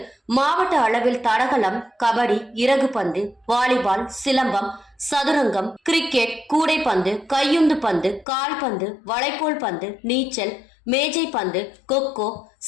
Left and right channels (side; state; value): right; drops out; at 8.2 s